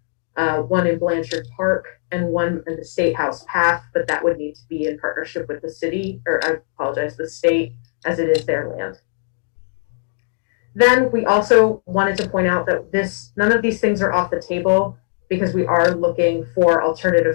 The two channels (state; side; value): silent; right; digital silence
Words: one in Blanchard Park and one in the State House Path, but that would need to be in partnership with the city, or I apologize, the state, as it is their land. Then we also wanted to point out that none of these things are off the table because we are looking for